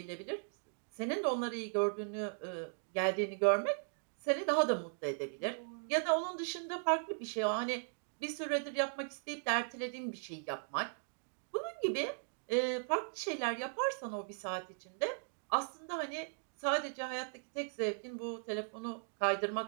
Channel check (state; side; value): silent; left; digital silence